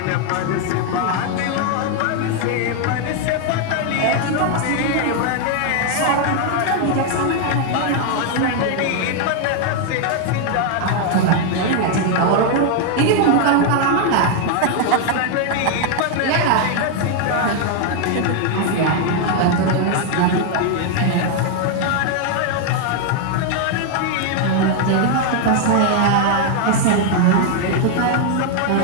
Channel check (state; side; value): different; both; correlation 0.00